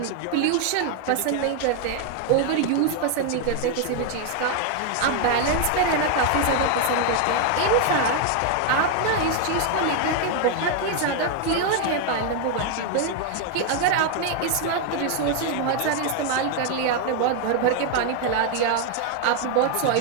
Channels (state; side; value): different; both; correlation 0.01